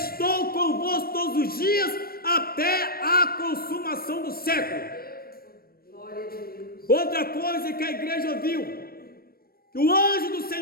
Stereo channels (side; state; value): right; late; 0.44 ms